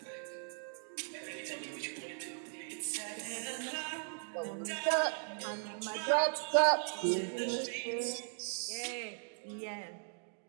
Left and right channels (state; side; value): silent; left; 52 dB below the other